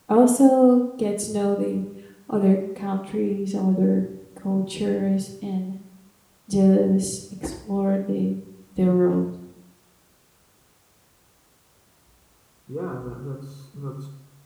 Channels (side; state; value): both; identical; correlation 1.00